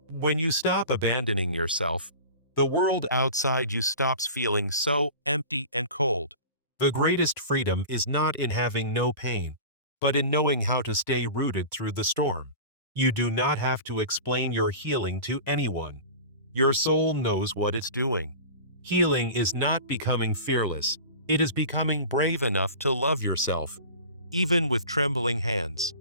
When you stop abandoning yourself, the world outside you stops feeling so empty and cold. The greatest freedom is not in having no pain, but in knowing how to stay rooted through the storm. You do not have to explain your healing to anyone. Your soul knows what it's doing. Healing is not becoming fearless. It is becoming brave enough to love yourself, even with trembling hands.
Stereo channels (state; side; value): inverted; both; correlation -0.36